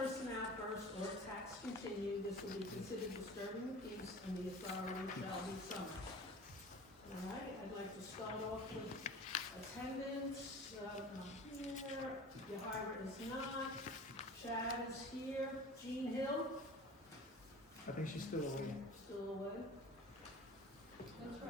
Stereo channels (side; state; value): both; normal; correlation 0.40